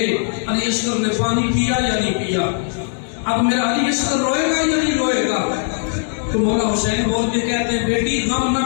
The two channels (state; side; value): silent; right; 67 dB below the other